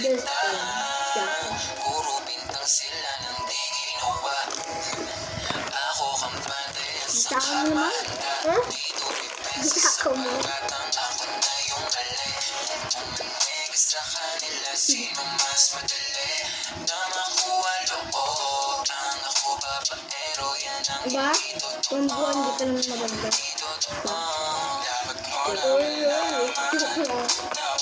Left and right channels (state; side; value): identical; both; correlation 1.00